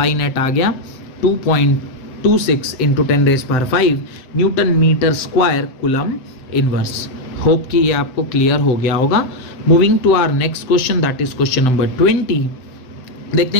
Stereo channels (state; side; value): late; right; 7.8 ms